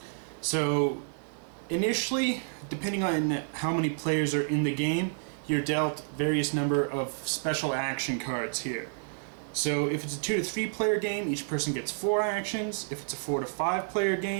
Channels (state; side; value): silent; left; digital silence